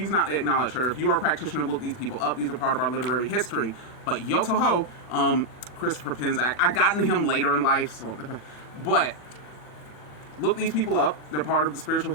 not to acknowledge her. If you are a practitioner, look these people up. These are part of our literary history. But Yoto Ho, Christopher Penczak, I got into him later in life, so, but look these people up. They're part of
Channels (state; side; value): late; right; 40 ms